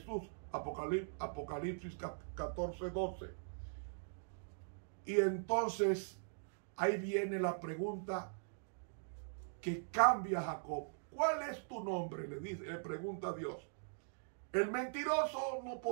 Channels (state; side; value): silent; left; digital silence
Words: Apocalipsis 14:12. Y entonces ahí viene la pregunta que cambia a Jacob. ¿Cuál es tu nombre? Le pregunta a Dios. El mentiroso no